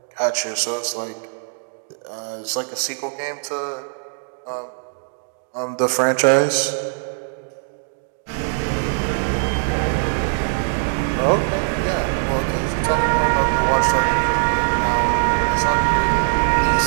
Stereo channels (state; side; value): silent; left; digital silence